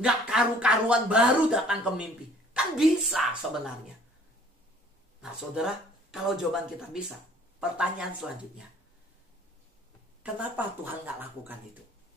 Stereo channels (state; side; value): normal; both; correlation 0.55